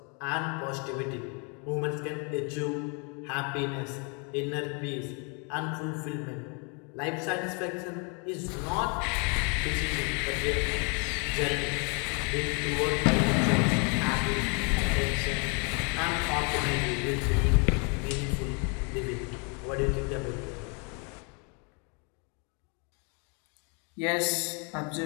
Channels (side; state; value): right; quieter; 34.8 dB